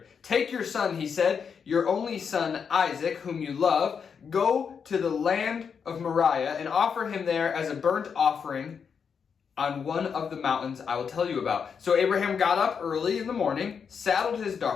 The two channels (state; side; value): quieter; right; 6.5 dB